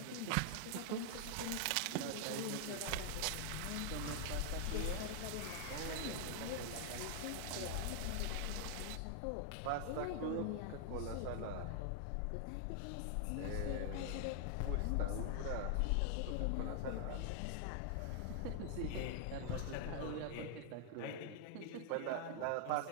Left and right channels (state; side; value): different; both; correlation 0.00